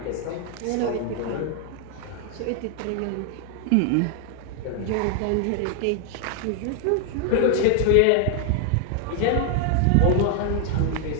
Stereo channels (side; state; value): both; different; correlation 0.00